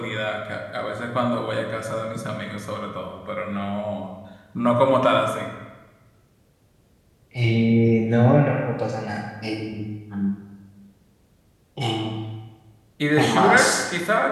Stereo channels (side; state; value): both; identical; correlation 1.00